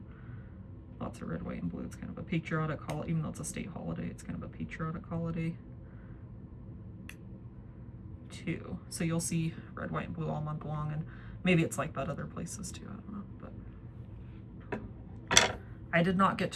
lots of red, white, and blue. It's kind of a patriotic holiday, even though it's a state holiday, it's kind of a patriotic holiday too. So you'll see red, white, and blue all month long, and maybe it's like that other places too, I don't know. But I did not get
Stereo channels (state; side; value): identical; both; correlation 1.00